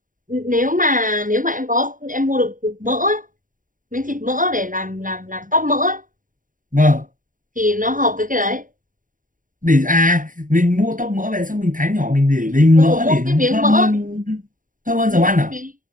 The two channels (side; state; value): left; late; 0.39 ms